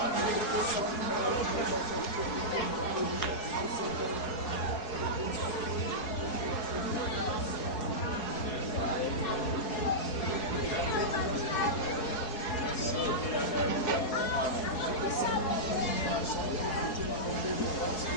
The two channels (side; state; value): right; late; 4.8 ms